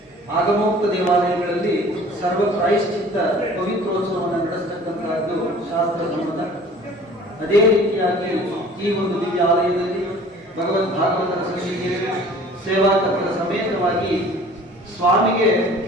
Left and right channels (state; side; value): normal; both; correlation 0.48